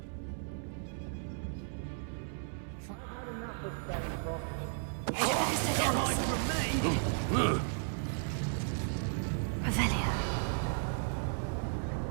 I've had enough of that. Come on from me! Revelio.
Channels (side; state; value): left; silent; 55 dB below the other